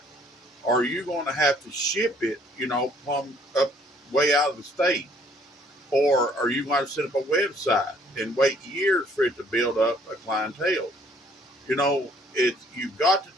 Are you going to have to ship it, plumb up way out of the state? Or are you going to set up a website and wait years for it to build up a clientele? You've got to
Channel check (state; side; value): normal; both; correlation 0.62